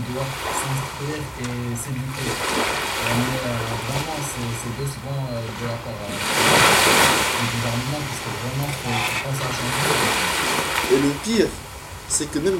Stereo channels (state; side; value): identical; both; correlation 1.00